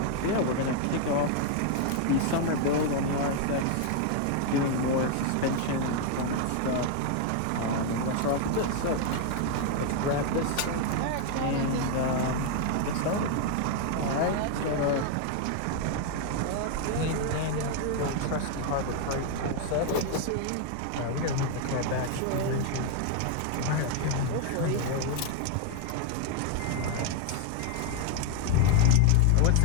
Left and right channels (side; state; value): both; different; correlation 0.01